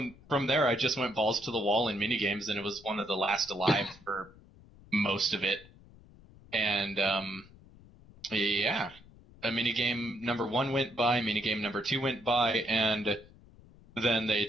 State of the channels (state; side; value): noise; left; rumble, 23 dB below the sound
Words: there, I just went balls to the wall in minigames, and it was one of the last alive for most of it. And yeah. Minigame number 1 went by, minigame number 2 went by, and then they